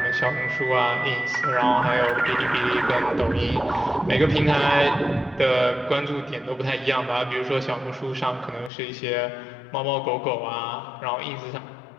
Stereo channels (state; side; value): drops out; right; at 8.7 s